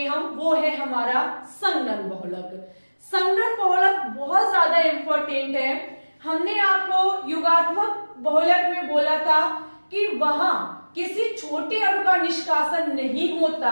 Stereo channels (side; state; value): both; inverted; correlation -1.00